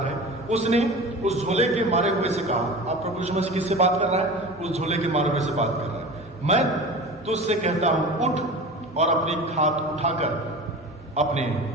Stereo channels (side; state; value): both; normal; correlation 0.34